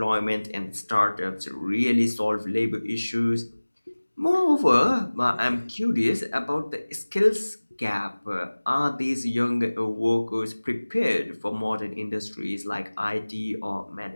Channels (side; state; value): both; inverted; correlation -1.00